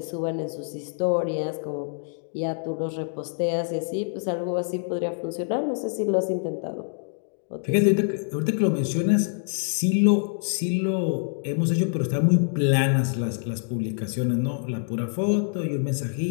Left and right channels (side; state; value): right; silent; digital silence